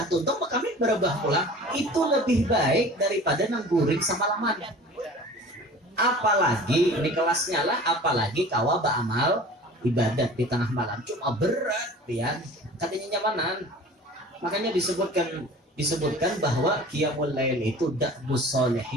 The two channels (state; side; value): normal; both; correlation 0.42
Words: tuntung bakal berubah pulang. Itu lebih baik daripada nang guring semalaman. Apalagi ini kelasnya lah, apalagi kawa beramal ibadat di tengah malam cuma berat pian, katanya nyamanan. Makanya disebutkan bahwa qiyamul lail itu da'bus